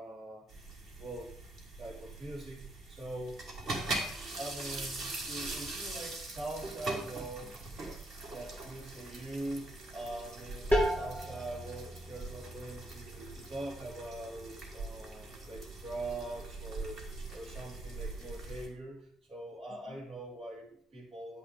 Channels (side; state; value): both; normal; correlation 0.77